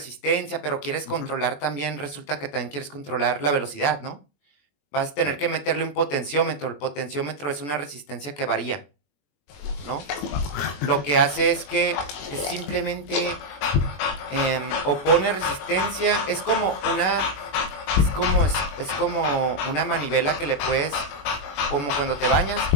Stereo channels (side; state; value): right; late; 21 ms